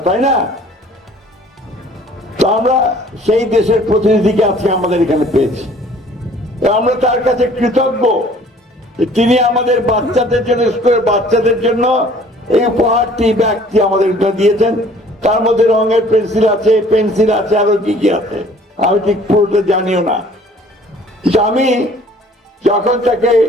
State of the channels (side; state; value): both; normal; correlation 0.54